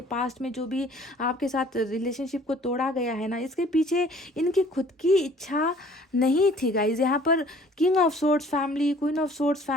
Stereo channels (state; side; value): normal; both; correlation 0.54